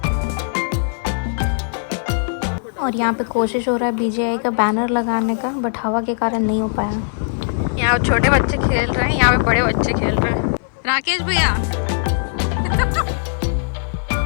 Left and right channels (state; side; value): silent; right; 56 dB below the other